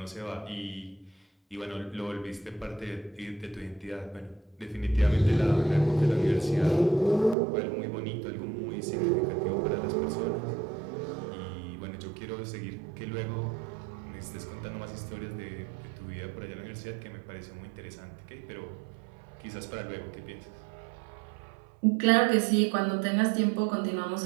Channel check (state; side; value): drops out; left; at 7.4 s